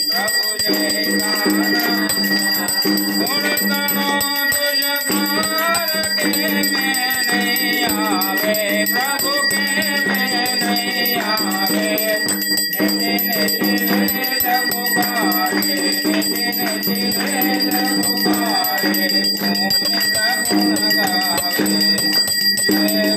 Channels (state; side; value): identical; both; correlation 1.00